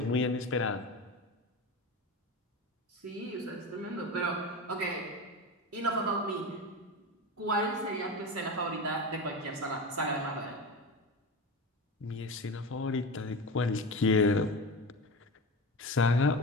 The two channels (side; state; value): both; normal; correlation 0.25